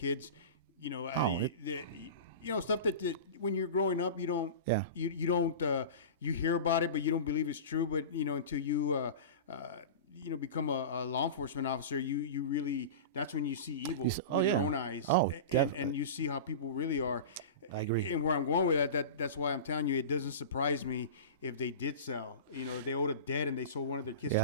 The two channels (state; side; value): inverted; both; correlation -0.30